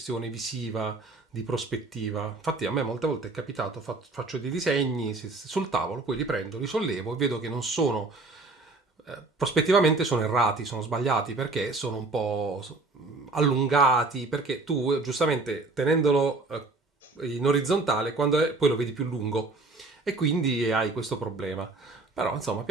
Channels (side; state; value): left; quieter; 3.3 dB